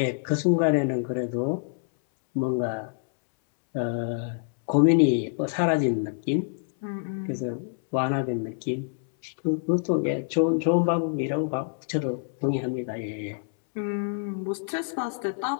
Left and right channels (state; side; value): silent; right; 61 dB below the other